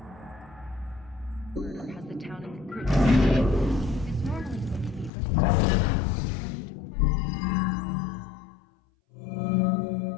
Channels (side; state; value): right; drops out; at 5.1 s